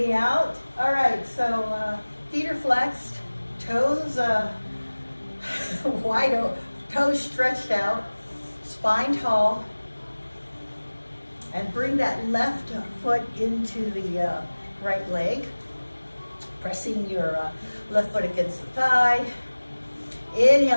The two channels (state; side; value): inverted; both; correlation -1.00